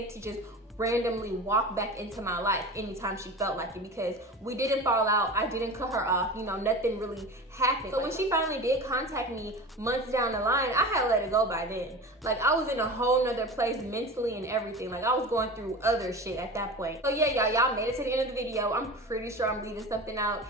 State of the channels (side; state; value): both; normal; correlation 0.32